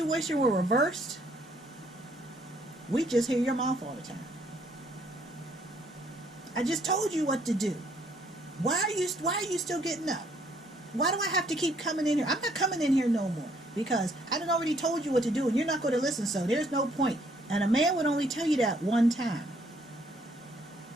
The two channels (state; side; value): normal; both; correlation 0.66